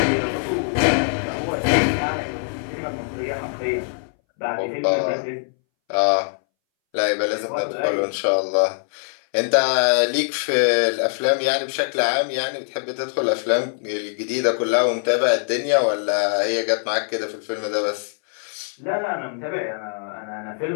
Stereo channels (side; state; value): right; silent; 62 dB below the other